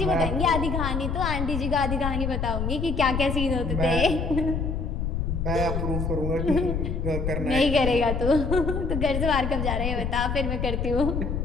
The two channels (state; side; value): noise; left; rumble, 1 dB below the sound